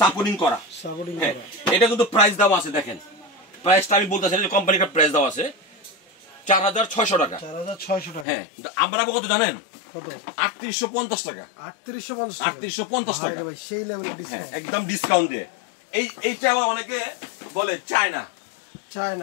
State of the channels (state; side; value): drops out; right; at 8.2 s